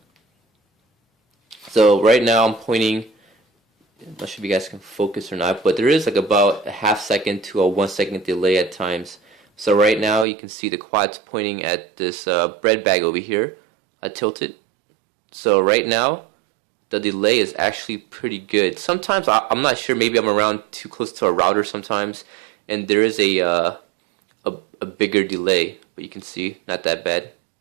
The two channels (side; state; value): left; drops out; at 10.2 s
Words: So right now I'm pointing. I'm not sure if you guys can focus or not, but there is like about a half second to a 1 second delay at times. So right now you can see the quad's pointing at this bread bag over here. I tilt it. So right now the delay is actually pretty good. Sometimes I'm not sure, maybe I'm around too close to a router sometimes, and there is a bigger delay, but you can see not that bad.